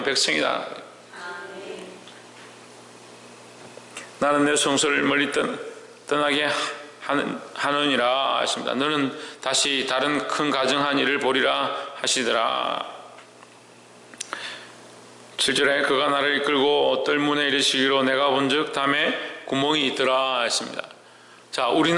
백성이다. 나는 내 성소를 멀리 떠나게 하느니라 하십니다. 너는 다시 다른 큰 가정한 일을 보리라 하시더라. 7절에 그가 나를 이끌고 뜰문에 이르시기로 내가 본즉 담에 구멍이 있더라 했습니다. 자,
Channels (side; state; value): both; identical; correlation 1.00